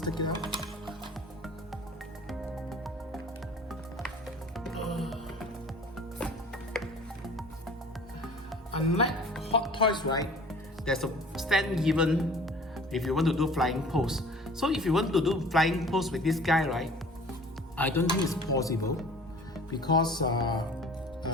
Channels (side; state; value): both; normal; correlation 0.47